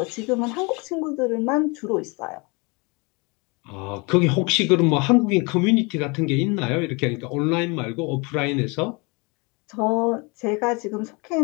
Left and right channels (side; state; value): right; quieter; 29.1 dB